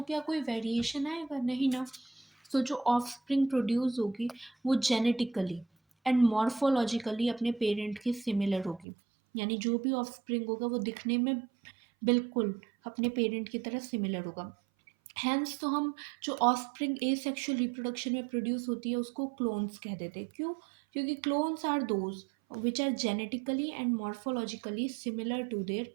क्या कोई वेरिएशन आएगा? नहीं ना। जो ऑफस्प्रिंग प्रोड्यूस होगी वो जेनेटिकली एंड मॉर्फोलॉजिकली अपने पेरेंट के सिमिलर होगी, यानी जो भी ऑफस्प्रिंग होगा वो दिखने में बिल्कुल अपने पेरेंट की तरह सिमिलर होगा। हैंस तो हम जो ऑफस्प्रिंग एसेक्सुअल रिप्रोडक्शन में प्रोड्यूस होती है उसको क्लोन्स कह देते हैं। क्यों? क्योंकि clones are those which are genetically and morphologically similar to their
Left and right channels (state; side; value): drops out; left; at 8.8 s